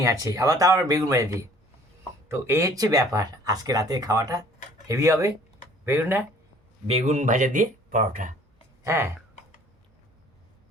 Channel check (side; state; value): both; normal; correlation 0.54